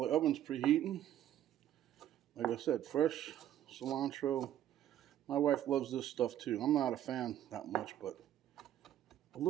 oven's preheating, like I said, fresh cilantro. My wife loves this stuff too. I'm not a fan that much, but a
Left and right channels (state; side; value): quieter; left; 11.7 dB